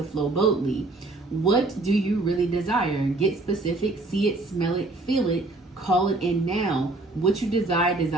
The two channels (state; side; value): quieter; left; 3.0 dB